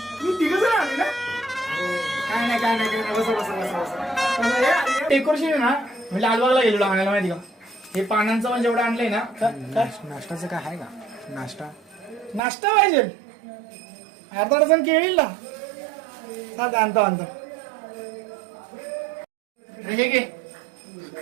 तुम्ही तिघ जण आले ना? काय नाही बसा. डेकोरेशन ना मी लालबागला गेलेलो आणायला माहिती का. हे पानांचं म्हणजे एवढं आणलंय ना. नाश्त्याचं काय आहे का? नाश्ता पाहिजे. अर्धा डझन केळी ना. आणतो. हे घे.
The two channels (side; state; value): left; drops out; at 12.4 s